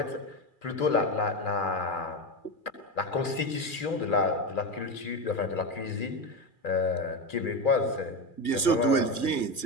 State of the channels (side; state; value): right; late; 2.4 ms